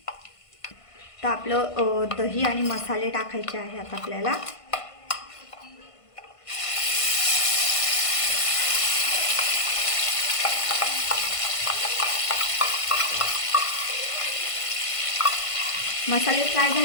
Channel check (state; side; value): late; right; 1.5 ms